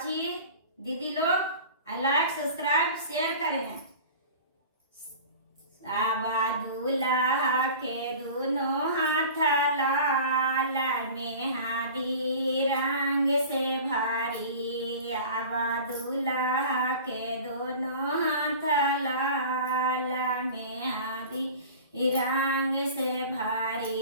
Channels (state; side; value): inverted; both; correlation -0.39